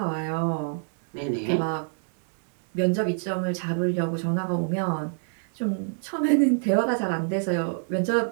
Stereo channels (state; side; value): silent; left; 61 dB below the other